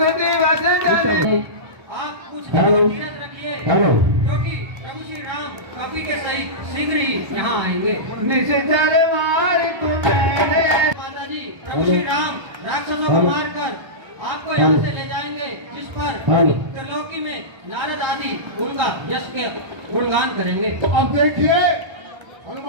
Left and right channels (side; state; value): left; late; 1.3 ms